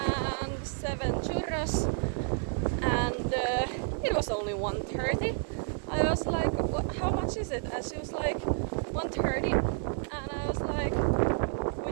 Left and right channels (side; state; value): left; silent; 58 dB below the other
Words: 7 churros, and it was only 1:30. I was like, how much is it? And she was like, 1:30, and I was like,